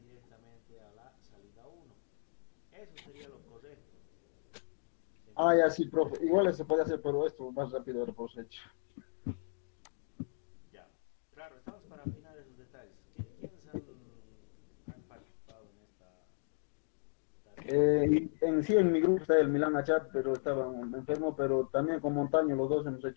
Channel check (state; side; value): silent; right; digital silence